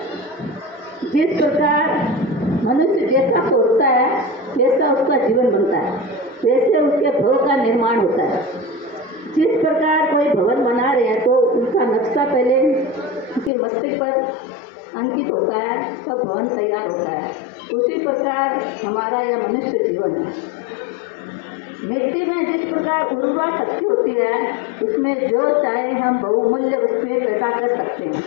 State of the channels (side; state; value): right; drops out; at 13.5 s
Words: जिस प्रकार मनुष्य जैसा सोचता है वैसा उसका जीवन बनता है, वैसे उसके भव का निर्माण होता है। जिस प्रकार कोई भवन बना रहे हैं तो उनका नक्शा पहले उनके मस्तिष्क पर अंकित होता है, तब भवन तैयार होता है। उसी प्रकार हमारा यह मनुष्य जीवन है। मिट्टी में जिस प्रकार उर्वरा शक्ति होती है, उसमें जो चाहे हम बहुमूल्य वस्तुएं पैदा कर सकते हैं।